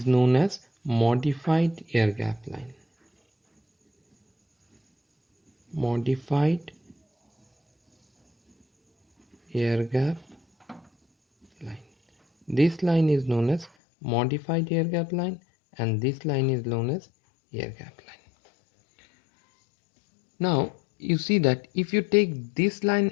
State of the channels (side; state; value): right; drops out; at 13.7 s